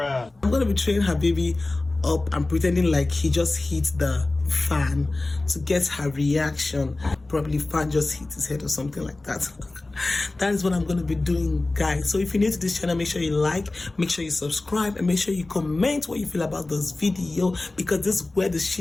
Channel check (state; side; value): quieter; right; 3.1 dB